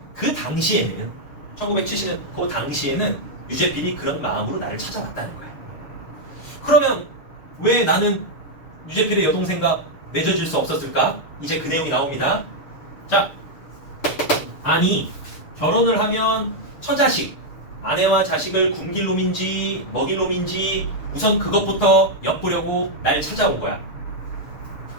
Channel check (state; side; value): late; right; 6.7 ms